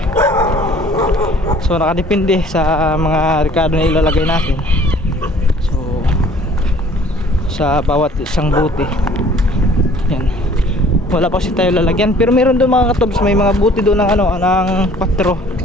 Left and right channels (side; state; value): both; normal; correlation 0.54